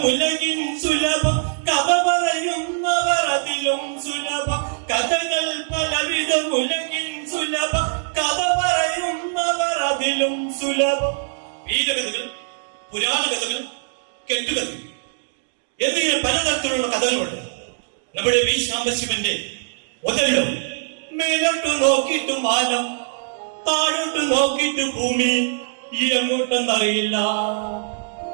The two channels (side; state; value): left; silent; digital silence